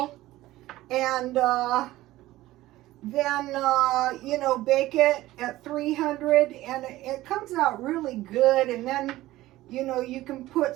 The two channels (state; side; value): quieter; left; 16.6 dB